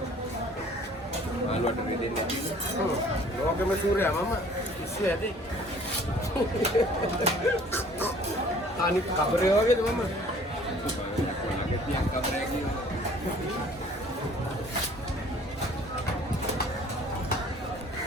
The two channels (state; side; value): normal; both; correlation 0.53